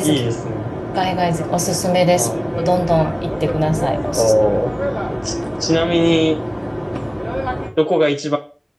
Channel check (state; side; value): identical; both; correlation 1.00